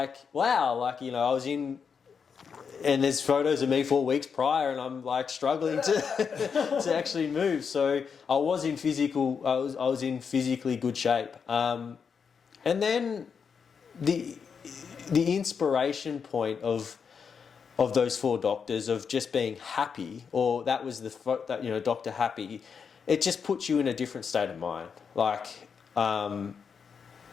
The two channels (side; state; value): right; quieter; 6.3 dB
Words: wow, like, I was in, and there's photos of me 4 weeks prior and I'm like struggling to to actually move. So I was in physically good shape. And then the inspiration point of those 4 doctors, of just being happy, or that was Dr. Happy, it just puts you in a different state of mind. Like, when